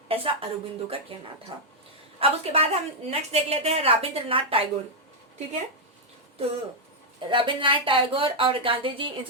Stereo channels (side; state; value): both; normal; correlation -0.03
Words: ایسا اروبندو کا کہنا تھا. اب اس کے بعد ہم نیکسٹ دیکھ لیتے ہیں رابندر ناتھ ٹیگور. ٹھیک ہے تو رابندر ناتھ ٹیگور اور گاندھی جی ان